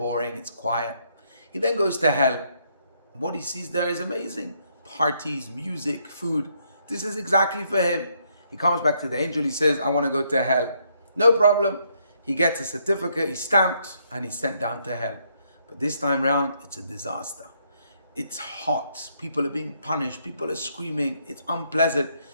It's quiet. He then goes to hell. What he sees there is amazing. Parties, music, food. This is exactly for him. He comes back to the angel. He says, I want to go to hell. No problem. He gets a certificate, he's stamped, and he's sent down to hell. But this time round, it's a disaster. It's hot. People are being punished. People are screaming. It's unpleasant.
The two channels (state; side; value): inverted; both; correlation -0.73